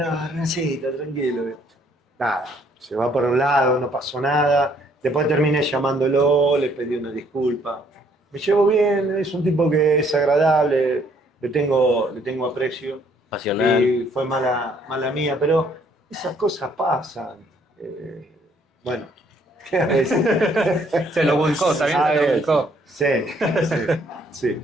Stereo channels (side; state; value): both; normal; correlation 0.65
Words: Hernancito, tranquilo. Nada, se va por un lado, no pasó nada. Después terminé llamándolo, le pedí una disculpa. Me llevo bien, es un tipo que es agradable, le tengo aprecio. Pasional. Y fue mala mía, pero esas cosas pasan. Bueno, a veces. Se lo buscó, también A se lo ver, buscó. Sí, sí.